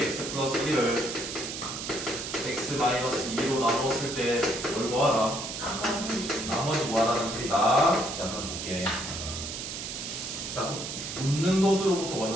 플러스 1을 x 마이너스 2로 나누었을 때 뭘 구하라? 나머지 구하라는 소리다. 자 그럼 볼게. 자 웃는 도수로부터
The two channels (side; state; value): right; noise; hiss, 6 dB below the sound